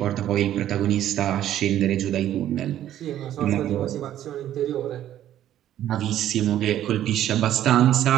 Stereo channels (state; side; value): quieter; left; 11.9 dB